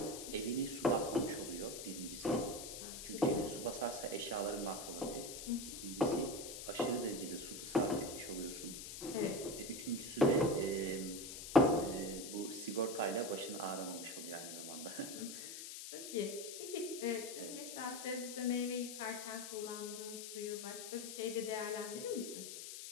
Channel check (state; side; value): noise; left; hiss, 8 dB below the sound